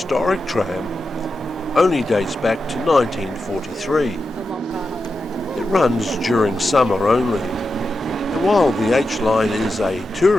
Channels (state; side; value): normal; both; correlation 0.89